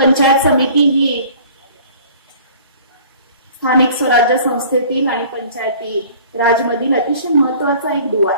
समिती ही स्थानिक स्वराज्य संस्थेतील आणि पंचायती राजमधील अतिशय महत्वाचा एक दुवा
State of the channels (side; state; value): both; inverted; correlation -0.49